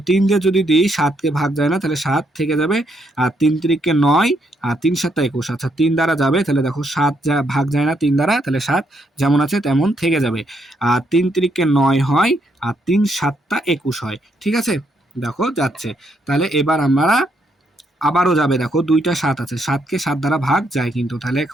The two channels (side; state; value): both; normal; correlation 0.75